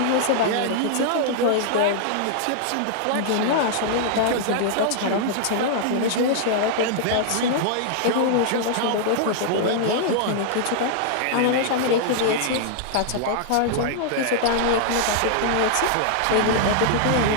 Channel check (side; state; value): both; different; correlation -0.01